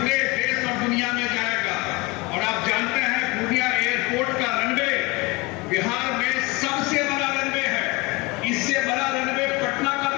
देश और दुनिया में जाएगा। और आप जानते हैं पूर्णिया एयरपोर्ट का रनवे बिहार में सबसे बड़ा रनवे है। इससे बड़ा रनवे पटना का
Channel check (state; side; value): quieter; right; 24.9 dB